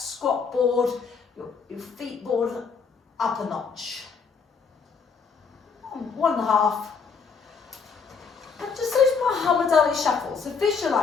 board, your feet board up a notch. 1.5. And just those Muhammad Ali shuffles. So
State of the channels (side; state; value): right; quieter; 5.5 dB